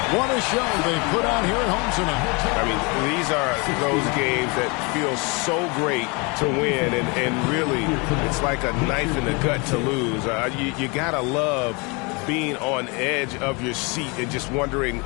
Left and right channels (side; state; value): right; quieter; 29.6 dB